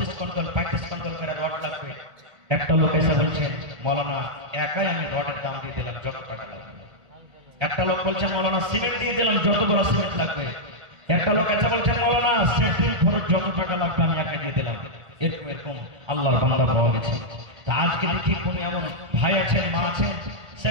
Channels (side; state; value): left; late; 1.3 ms